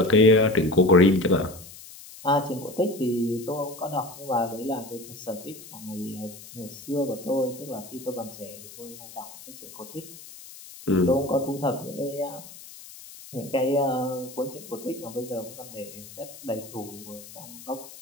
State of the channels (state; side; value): noise; left; hiss, 17 dB below the sound